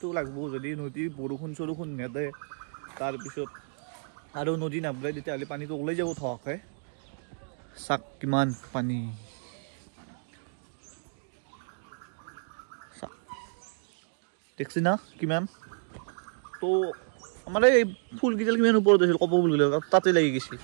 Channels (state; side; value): silent; left; digital silence